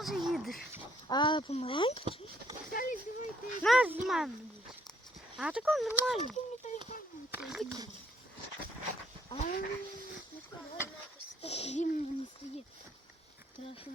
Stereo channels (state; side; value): normal; both; correlation 0.67